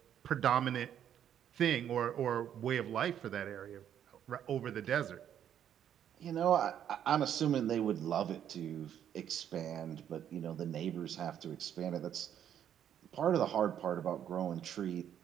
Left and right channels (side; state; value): left; quieter; 9.8 dB